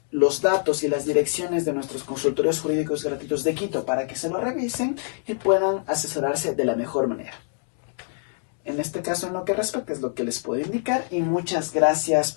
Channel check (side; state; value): right; silent; digital silence